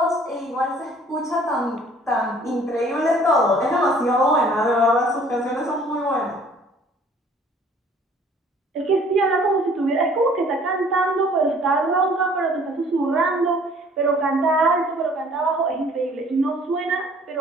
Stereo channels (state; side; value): normal; both; correlation 0.55